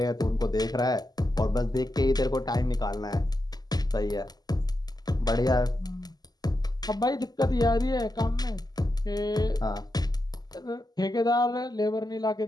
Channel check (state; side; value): late; right; 0.20 ms